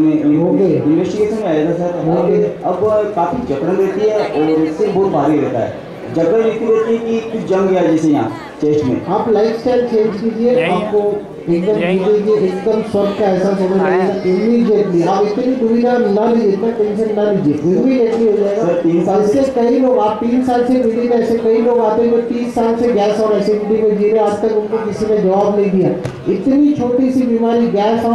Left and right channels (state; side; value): identical; both; correlation 1.00